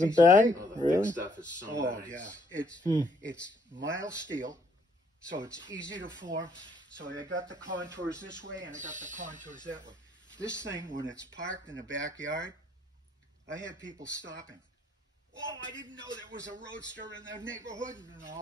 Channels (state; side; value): normal; both; correlation 0.67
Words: piece of bad? paper. Oh, the Really? thick stuff is so Oh, nice. yeah. It's mild steel, so it's easy to form. So I got the contours this way and I got the contours that way. This thing, when it's parked in the backyard, I had people stopping. Oh, I didn't know there was a roadster in the neighborhood and